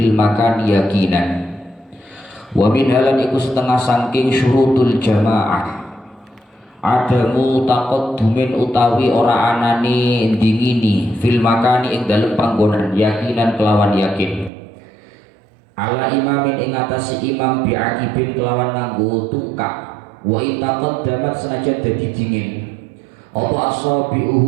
المكان يقينا. ومنها lan iku setengah saking syurutul jamaah adamu taqaddumin utawi ora anane ndingini fil makani ing dalem panggonan yakinan kelawan yakin ala imamin ing atas imam bi'akibin kelawan nganggo tungkak wa itaqaddamat senajan dadi dingin apa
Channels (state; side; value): drops out; left; at 14.5 s